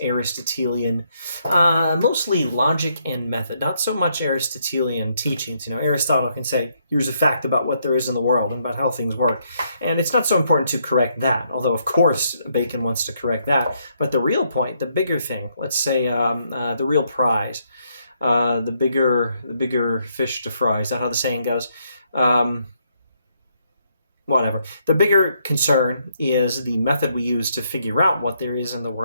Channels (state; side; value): inverted; both; correlation -0.74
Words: Aristotelian, mostly logic and method, not so much Aristotelian teachings. Aristotle can say, here's a fact about what there is in the world and about how things work. And it's not so important to correct that, although of course Bacon wants to correct that. But the real point, the bigger thing, let's say the real prize, the bigger fish to fry, is that how the saying goes? Whatever. The bigger concern is the method we use to figure out what there is in the